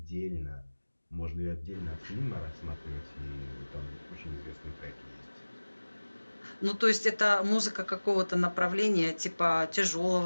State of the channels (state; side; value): inverted; both; correlation -1.00